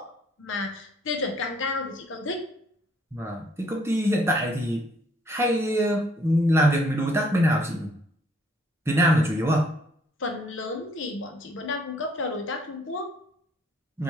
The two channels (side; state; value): both; normal; correlation 0.64